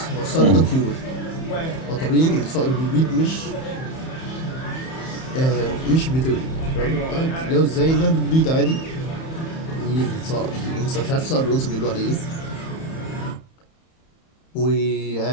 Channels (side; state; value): right; late; 31 ms